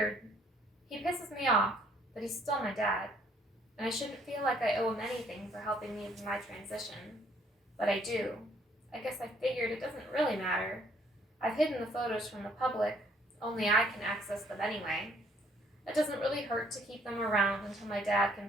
He pisses me off, but he's still my dad, and I shouldn't feel like I owe him anything for helping me with my transition. But I do. I guess I figured it doesn't really matter. I've hidden the photos from the public, only I can access them anyway. It doesn't really hurt to keep them around until my dad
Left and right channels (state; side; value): normal; both; correlation 0.64